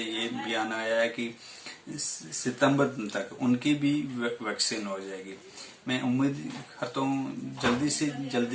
बयान आया है कि सितंबर तक उनकी भी वैक्सीन हो जाएगी। मैं उम्मीद करता हूँ जल्दी से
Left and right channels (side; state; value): both; identical; correlation 1.00